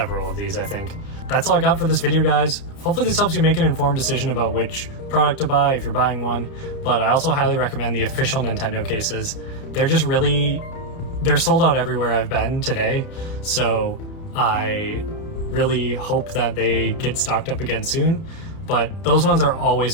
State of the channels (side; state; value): right; late; 30 ms